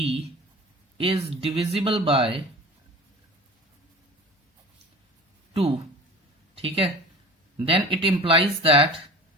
is divisible by 2, ठीक है, then it implies that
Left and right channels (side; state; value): both; normal; correlation 0.38